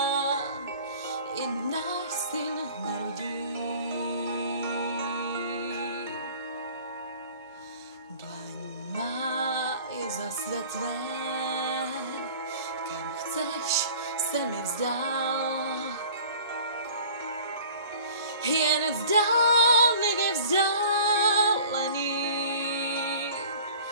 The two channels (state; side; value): inverted; both; correlation -0.45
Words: i náš syn narodí. Dlaň má je zasvětlé, kam chceš se mi vzdát. Jen vzdálivě vzdálený,